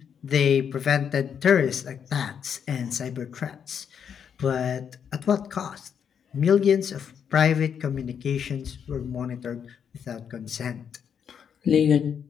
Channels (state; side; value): quieter; right; 7.7 dB